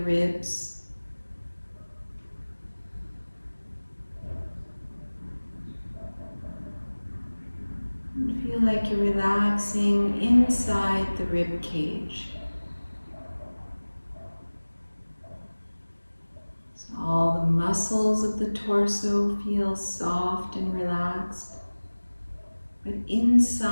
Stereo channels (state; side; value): inverted; both; correlation -1.00